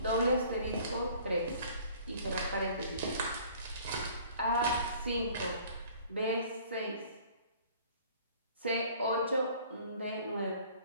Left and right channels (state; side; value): inverted; both; correlation -0.52